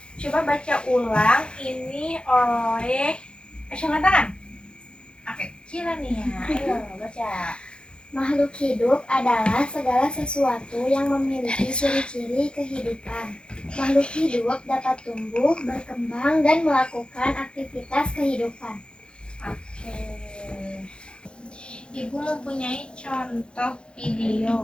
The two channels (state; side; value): late; right; 0.054 ms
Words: Coba baca ulang ini oleh angkat tangan. Oke, kira nih ya. Ayo baca. Makhluk hidup adalah segala sesuatu yang memiliki ciri-ciri kehidupan. Makhluk hidup dapat tumbuh, berkembang, dan melakukan aktivitas kehidupan. Oke. Ibu mempunyai contoh